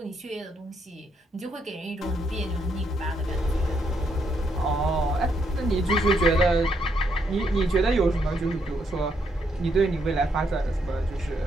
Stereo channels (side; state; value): both; normal; correlation 0.75